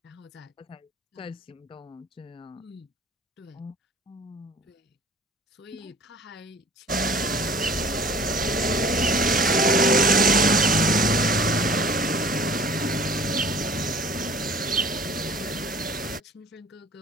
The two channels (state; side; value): normal; both; correlation 0.47